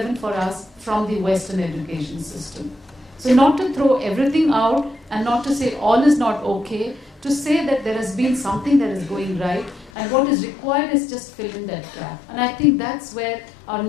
for us from the Western education system. So not to throw everything out and not to say all is not okay, to say that there has been something that is going right, and what is required is just fill in that gap. And I think that's where our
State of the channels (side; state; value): right; drops out; at 9.9 s